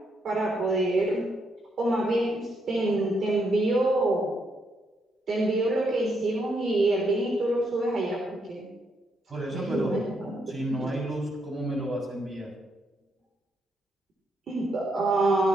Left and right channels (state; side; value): normal; both; correlation 0.77